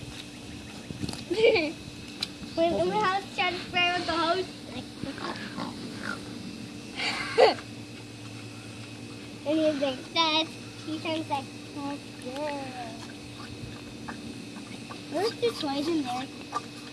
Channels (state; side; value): identical; both; correlation 1.00